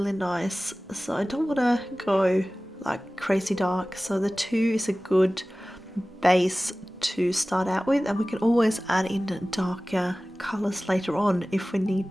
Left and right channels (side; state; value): both; normal; correlation 0.97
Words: nice. So I don't want to go like crazy dark, so the 2 is a good base to start out with, and we can always add in darker colors later on if we need